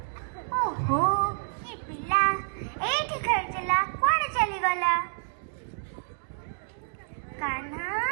ओहो ये पिला एठी खेलुला कुआडे चली गला। कान्हा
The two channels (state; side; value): silent; left; digital silence